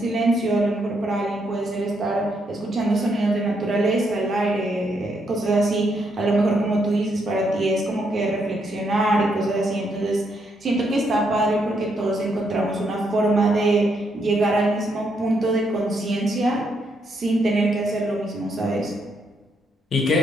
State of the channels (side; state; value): both; normal; correlation 0.76